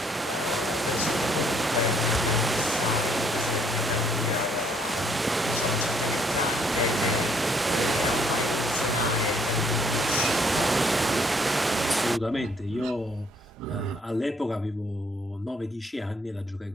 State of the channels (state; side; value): normal; both; correlation 0.66